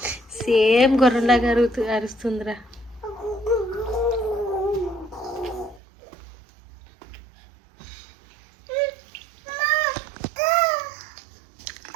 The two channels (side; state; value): left; drops out; at 5.8 s